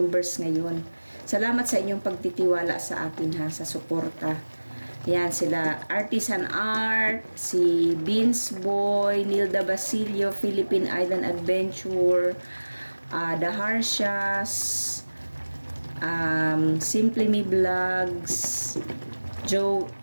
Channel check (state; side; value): inverted; both; correlation -1.00